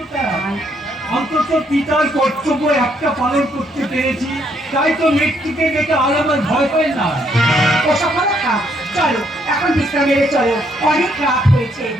অন্তত পিতার কর্তব্য একটা পালন করতে পেরেছি, তাই তো মৃত্যুকে দেখে আর আমার ভয় পাই না। ওসব কথা খা, চলো এখন বিশ্রাম মেরে চলো, অনেক রাত হয়েছে।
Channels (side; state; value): both; normal; correlation 0.71